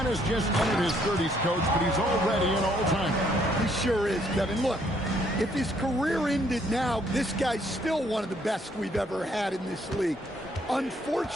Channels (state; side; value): normal; both; correlation 0.68